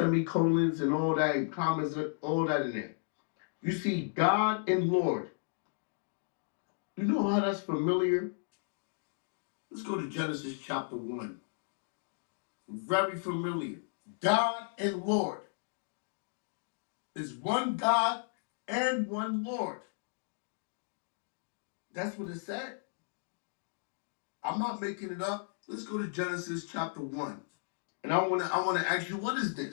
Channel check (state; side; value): silent; right; digital silence